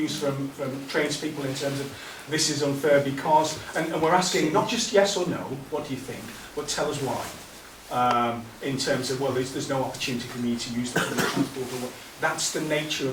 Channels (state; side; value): identical; both; correlation 1.00